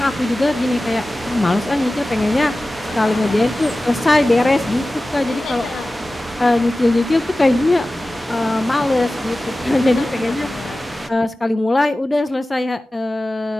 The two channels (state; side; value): normal; both; correlation 0.96